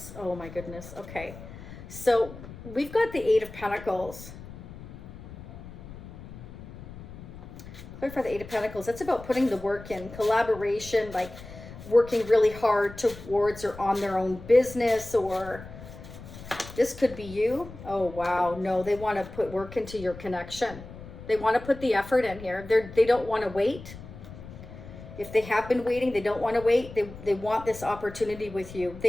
Oh my goodness. Okay. So we've got the Eight of Pentacles. Clarify the Eight of Pentacles. That's about putting the work in, collaboration, like working really hard towards or on their own business, or this could be you. Oh, wow. No, they want to put work into your connection. They want to put the effort in here. They don't want to wait. If they have been waiting, they don't want to wait. They want this opportunity with you.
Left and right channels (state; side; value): noise; left; rumble, 14 dB below the sound